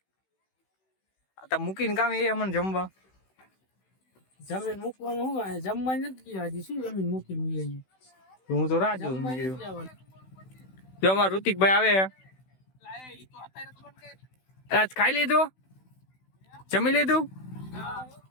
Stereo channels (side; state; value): right; late; 16 ms